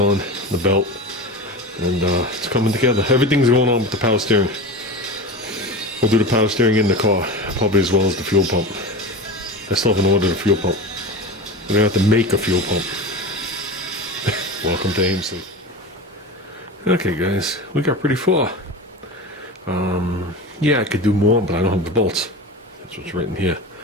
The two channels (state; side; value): normal; both; correlation 0.28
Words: the belt, and it's coming together. Everything's going on with the power steering. We'll do the power steering in the car, probably as well as the fuel pump. I still haven't ordered a fuel pump. We're going to have to make a fuel pump. Welcome to AMC. Okay guys, we got pretty far. Yeah, I could do more, but I don't have the bolts. That's what's written here.